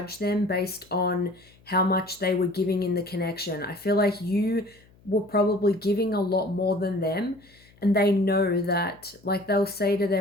them based on how much they were giving in the connection. I feel like you were probably giving a lot more than them, and they know that, like they'll say to their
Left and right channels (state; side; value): noise; left; hum, 29 dB below the sound